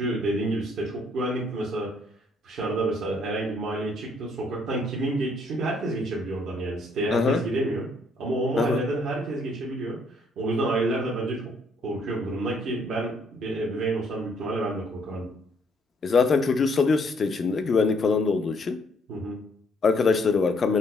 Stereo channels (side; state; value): both; normal; correlation 0.67